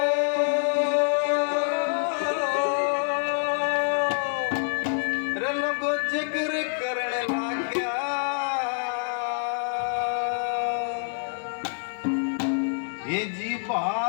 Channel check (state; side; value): silent; right; 61 dB below the other